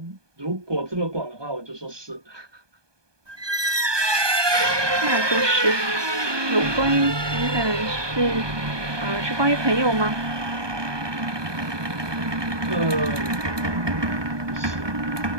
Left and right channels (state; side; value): late; left; 1.2 ms